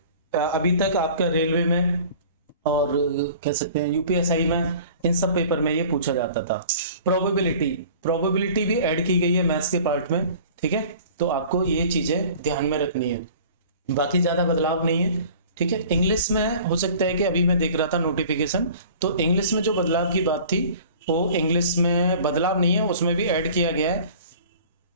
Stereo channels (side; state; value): both; inverted; correlation -0.46